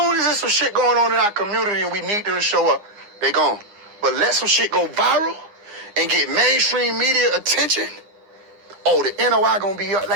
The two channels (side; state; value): left; late; 9.8 ms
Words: as there's some shit going on in our community and we need them to show up, they gone. But let some shit go viral and get mainstream media attention. Oh, the NOI gonna be up.